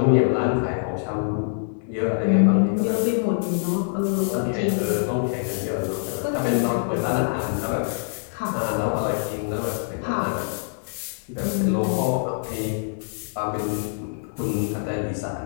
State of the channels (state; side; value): silent; right; 62 dB below the other